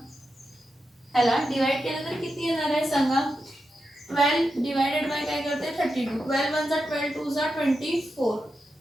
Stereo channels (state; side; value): normal; both; correlation 0.88